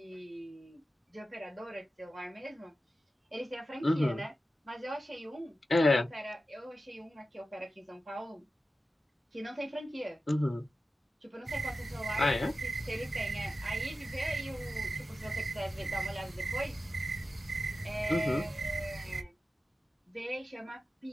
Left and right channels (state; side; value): normal; both; correlation 0.93